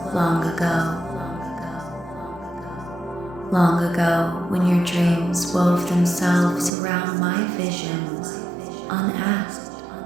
long ago. Long ago, when your dreams wove themselves around my visions, unasked.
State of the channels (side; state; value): left; drops out; at 6.7 s